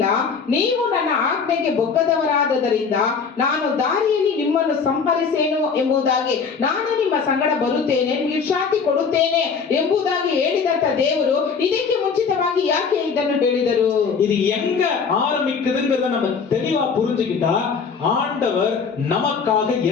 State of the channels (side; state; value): right; quieter; 5.7 dB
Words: ನೀವು ನನ್ನ ಆಜ್ಞೆಗೆ ಬೊಕ್ಕದವರಾದದರಿಂದ ನಾನು ದಾರಿಯಲ್ಲಿ ನಿಮ್ಮನ್ನು ಸಂಹರಿಸೇನು ಎಂಬುದಾಗಿ, ನಾನು ನಿಮ್ಮ ಸಂಗಡ ಬರುತ್ತೇನೆ, ವಿಶ್ರಾಂತಿ ಕೊಡುತ್ತೇನೆ ಎಂಬುದಾಗಿ ಹೇಳಿದಂತ ದೇವರು ಇದಕ್ಕೆ ಮುಂಚಿತವಾಗಿ ಯಾಕೆ ಇದನ್ನು ಹೇಳಿದರು? இது எங்க ஆரம்பிக்குதுங்கிறத நம்ம தெளிவா புரிஞ்சுக்கிட்டா ஆண்டவர் நமக்காக